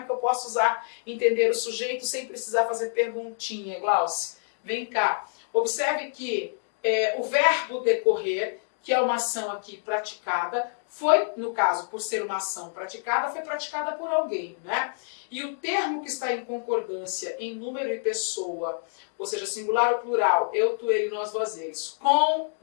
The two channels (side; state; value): right; silent; digital silence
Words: que eu posso entender o sujeito sem precisar fazer perguntinha, Glauce? Vem cá. Observe que o verbo decorrer, que é uma ação aqui praticada, foi, no caso, por ser uma ação praticada, foi praticada por alguém, né? E o termo que está em concordância em número e pessoa, ou seja, singular ou plural, eu, tu, ele, nós, vós, eles, com